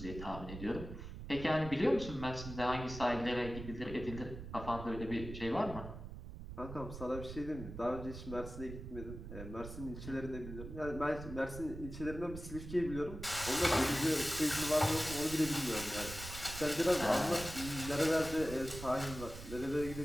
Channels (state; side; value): noise; right; rumble, 10 dB below the sound